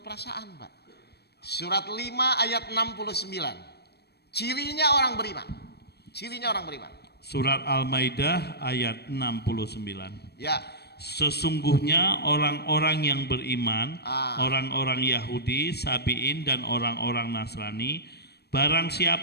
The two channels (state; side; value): late; right; 0.47 ms